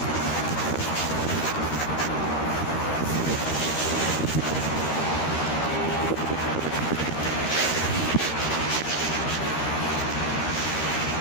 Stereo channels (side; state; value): right; late; 13 ms